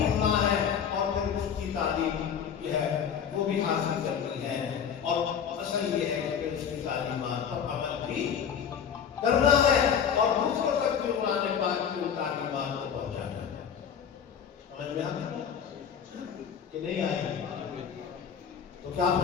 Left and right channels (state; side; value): quieter; right; 7.8 dB